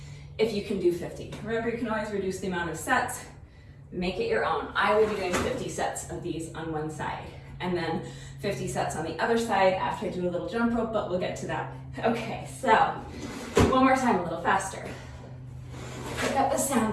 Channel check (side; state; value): both; identical; correlation 1.00